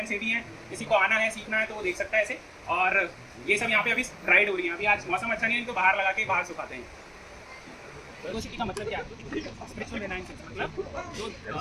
सेवी हैं, किसी को आना है सीखना है तो वो देख सकता है ऐसे। और ये सब यहाँ पे अभी राइड हो रही है। अभी आज मौसम अच्छा नहीं है तो बाहर लगा के बाहर सुखाते हैं। वेगोसिटी का मतलब क्या है? स्पिरिचुअल रिनाइंस, मतलब जो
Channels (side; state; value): both; identical; correlation 1.00